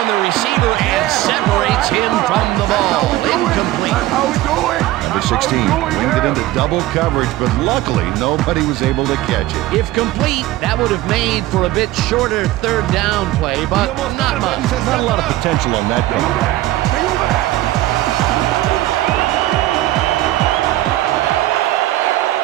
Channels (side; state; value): left; quieter; 15.9 dB